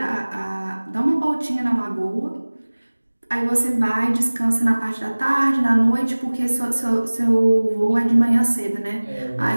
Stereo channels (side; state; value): both; inverted; correlation -1.00